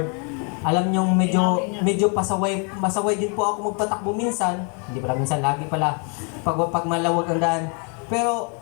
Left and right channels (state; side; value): quieter; right; 37.7 dB